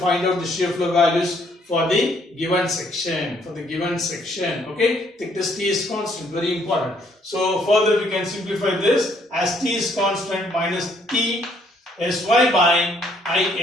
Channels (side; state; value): both; normal; correlation 0.67